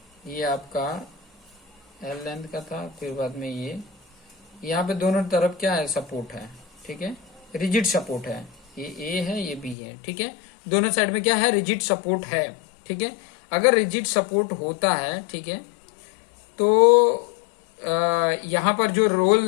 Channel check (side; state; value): right; drops out; at 9.8 s